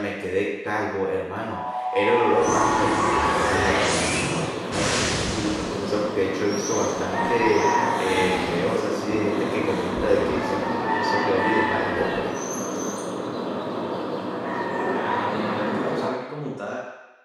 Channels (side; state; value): both; identical; correlation 1.00